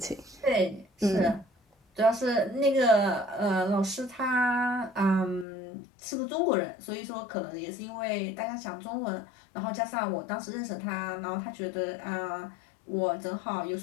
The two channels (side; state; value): right; drops out; at 5.5 s